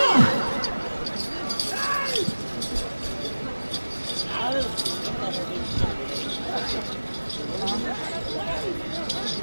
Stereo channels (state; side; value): inverted; both; correlation -1.00